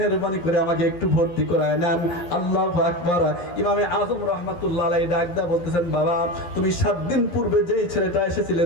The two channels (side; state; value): right; late; 11 ms